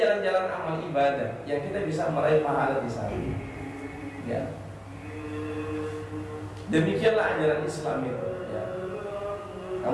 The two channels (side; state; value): both; identical; correlation 1.00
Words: jalan-jalan amal ibadah yang kita bisa meraih pahala di sana. Ya, demikianlah ajaran Islam itu. Ya.